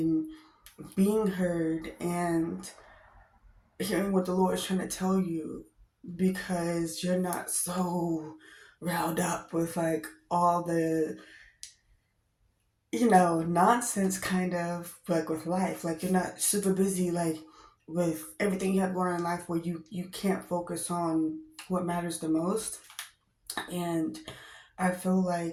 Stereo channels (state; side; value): identical; both; correlation 1.00